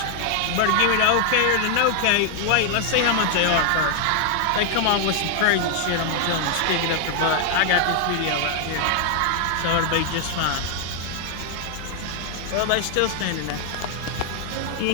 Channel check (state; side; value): different; both; correlation 0.00